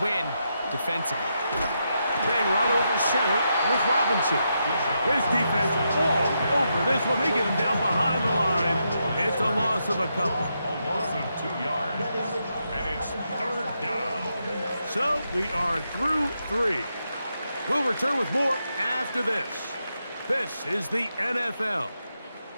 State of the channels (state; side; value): inverted; both; correlation -0.83